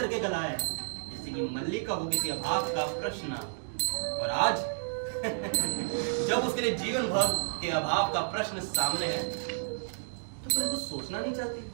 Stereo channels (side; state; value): left; silent; digital silence